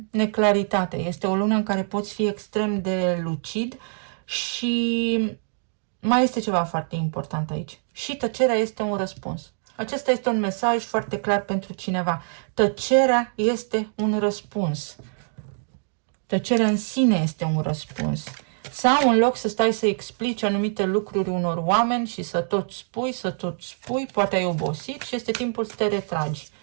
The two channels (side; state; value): left; silent; digital silence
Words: neclaritate. Este o lună în care poți fi extrem de lucid și mai este ceva foarte important aici. Și tăcerea este un răspuns. Acesta este un mesaj foarte clar pentru cineva. Tăcerea este un răspuns. Tăcerea în sine este un răspuns. Sau în loc să stai să explici anumite lucruri unor oameni și să tot spui, poate ai obosit și este timpul să te retragi.